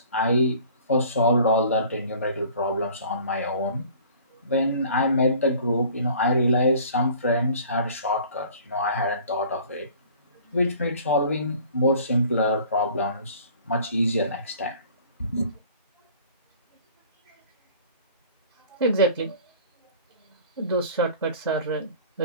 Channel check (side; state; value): both; inverted; correlation -0.49